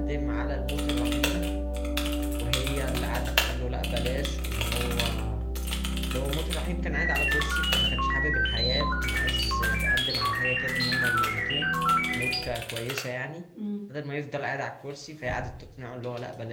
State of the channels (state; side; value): identical; both; correlation 1.00